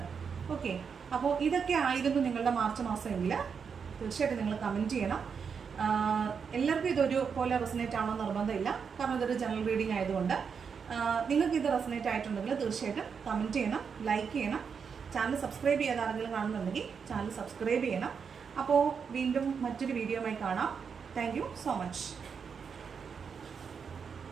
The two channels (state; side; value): quieter; left; 6.3 dB